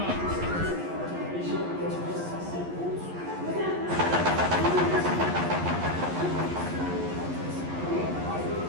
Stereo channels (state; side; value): late; left; 11 ms